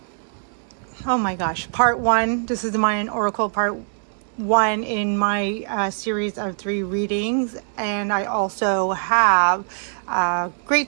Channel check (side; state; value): left; silent; digital silence